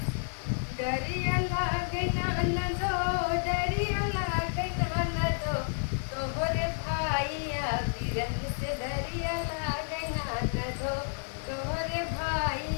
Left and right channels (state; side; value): silent; right; 57 dB below the other